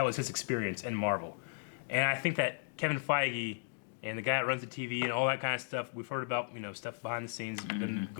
was his experience in Marvel. And I think that Kevin Feige and the guy that runs the TV and all that kind of stuff, we've heard about, you know, stuff behind the scenes, and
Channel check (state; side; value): silent; right; digital silence